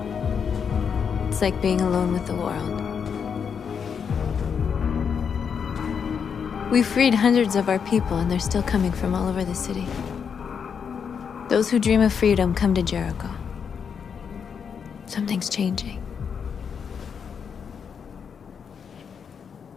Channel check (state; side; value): quieter; right; 6.8 dB